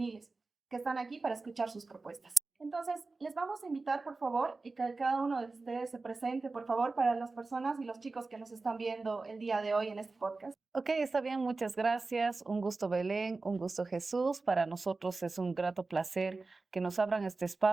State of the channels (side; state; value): left; quieter; 3.7 dB